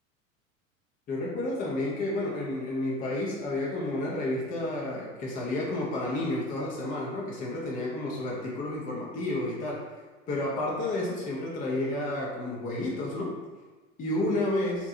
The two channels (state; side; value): normal; both; correlation 0.42